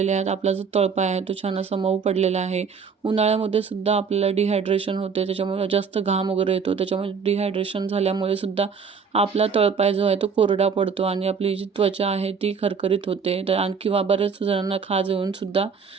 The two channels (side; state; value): left; quieter; 5.9 dB